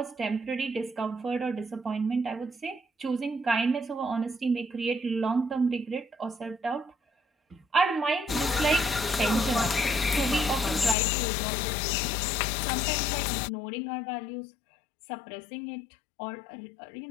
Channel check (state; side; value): drops out; right; at 11.0 s